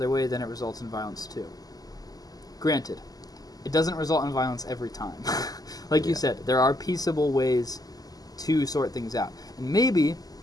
way, then it results in violence too. Granted, it doesn't result in violence every time. Like you said, there are peaceable ways to sort things out. And maybe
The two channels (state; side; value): late; right; 0.18 ms